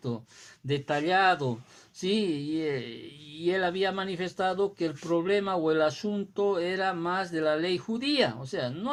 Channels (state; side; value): identical; both; correlation 1.00